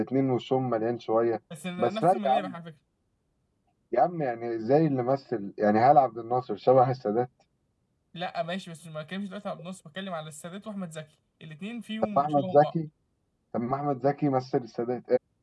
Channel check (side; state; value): both; identical; correlation 1.00